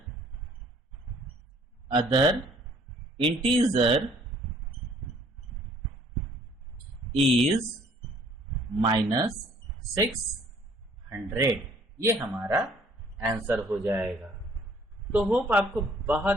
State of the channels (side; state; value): both; normal; correlation 0.59